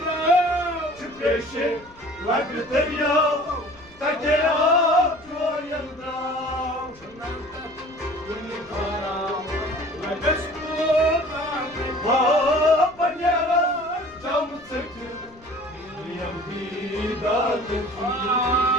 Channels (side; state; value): left; noise; rumble, 26 dB below the sound